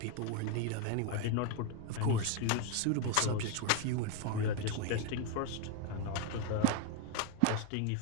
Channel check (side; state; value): both; different; correlation 0.01